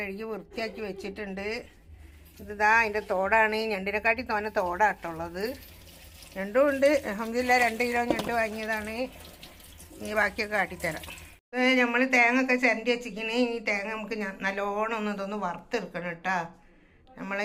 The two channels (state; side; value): identical; both; correlation 1.00